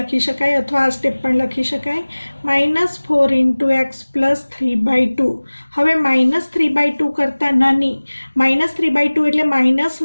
શકાય અથવા આ સ્ટેપ પણ લખી શકાય, -4 ઇન્ટુ એક્સ પ્લસ 3/2। હવે -3/2 કરતાં નાની, -3/2 એટલે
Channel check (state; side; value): inverted; both; correlation -1.00